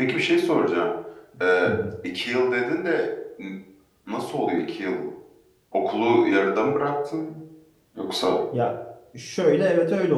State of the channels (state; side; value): identical; both; correlation 1.00